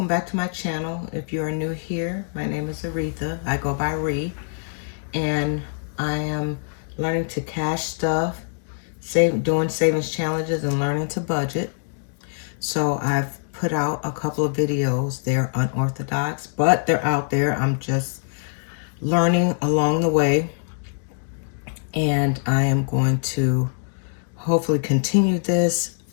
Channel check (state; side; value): silent; right; 63 dB below the other